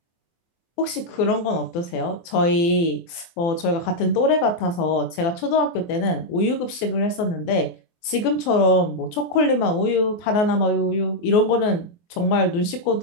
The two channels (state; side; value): late; right; 24 ms